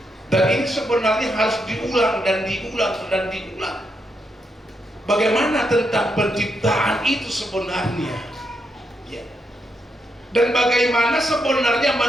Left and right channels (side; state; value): both; normal; correlation 0.81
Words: Dan ini sebenarnya harus diulang dan diulang dan diulang. Bagaimana tentang penciptaan itu sebenarnya, ya. Dan bagaimana sebenarnya